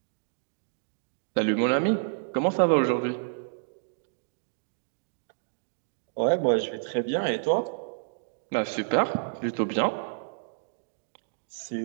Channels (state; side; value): silent; left; digital silence